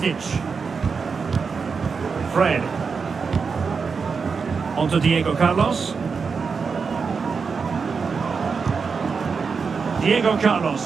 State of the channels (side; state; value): left; quieter; 5.3 dB